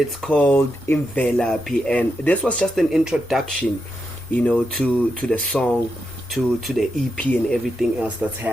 called Imvelaphi. And this was just an introduction, to the song, to the EP and everything else that's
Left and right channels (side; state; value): both; normal; correlation 0.85